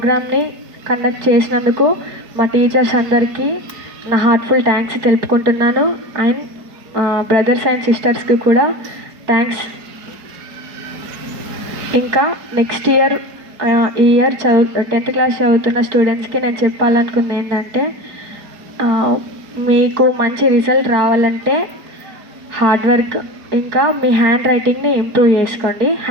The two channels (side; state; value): left; late; 4.5 ms